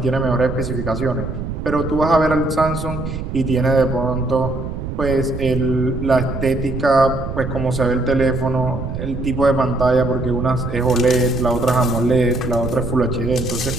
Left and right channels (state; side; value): noise; right; rumble, 6 dB below the sound